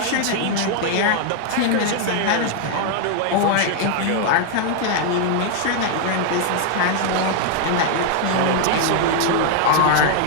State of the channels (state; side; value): different; both; correlation 0.00